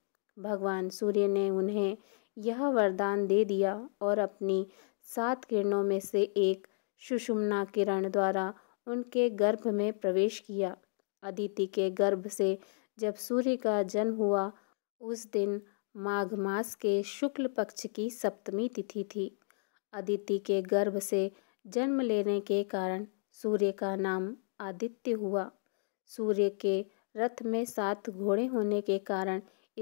भगवान सूर्य ने उन्हें यह वरदान दे दिया और अपनी 7 किरणों में से एक सुषुम्ना किरण द्वारा उनके गर्भ में प्रवेश किया। अदिति के गर्भ से जब सूर्य का जन्म हुआ, उस दिन माघ मास के शुक्ल पक्ष की सप्तमी तिथि थी। अदिति के गर्भ से जन्म लेने के कारण सूर्य का नाम आदित्य हुआ। सूर्य के रथ में 7 घोड़े होने के कारण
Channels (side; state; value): right; silent; digital silence